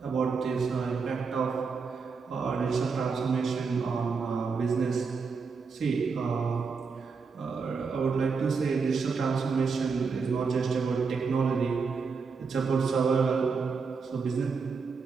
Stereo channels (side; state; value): left; quieter; 5.1 dB